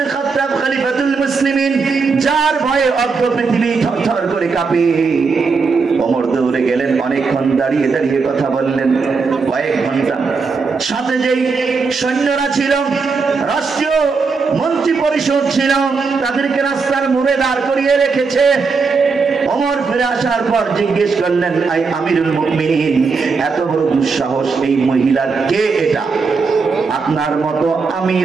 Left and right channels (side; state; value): left; quieter; 4.7 dB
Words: খাত্তাব খলিফাতুল মুসলিমিন, যার ভয়ে অর্ধ পৃথিবী থরথর করে কাঁপে। ওমর দৌড়ে গেলেন, অনেকক্ষণ দাঁড়িয়ে দাঁড়িয়ে কথা বললেন, কয়েক ঘন্টা। সাথে যেই সৈন্যরা ছিল, রাষ্ট্রীয় মন্ত্রী পরিষদ ছিল, তাদেরকে রাস্তার মোড়ে দাঁড় করিয়ে রেখেছে। ওমর ফিরে আসার পর জিজ্ঞেস করলেন, আই আমিরুল মুমিনিন, এত বড় দুঃসাহস এই মহিলার, কে এটা? আপনার মতো